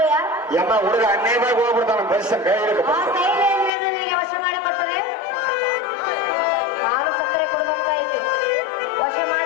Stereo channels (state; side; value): drops out; right; at 3.7 s